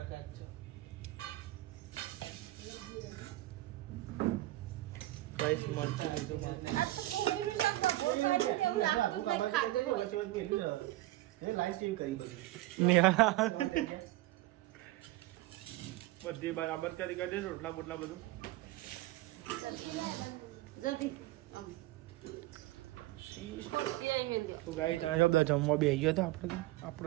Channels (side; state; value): left; quieter; 17.7 dB